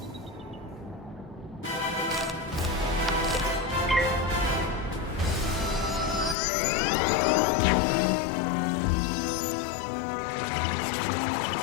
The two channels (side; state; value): right; drops out; at 6.4 s